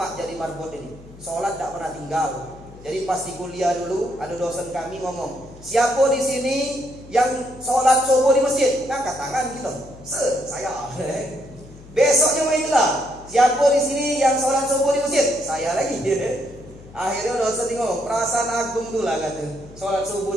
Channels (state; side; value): noise; left; hum, 20 dB below the sound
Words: jadi marbot ini. Sholat dak pernah tinggal. Jadi pas di kuliah dulu ada dosen kami ngomong, siapa di sini yang sholat subuh di masjid? Ngangkat tangan gitu. Saya. Besoknya itulah, siapa di sini yang sholat subuh di masjid? Saya lagi. Akhirnya dosen ngomong, perasaan agung tuh lah kata, sholat subuh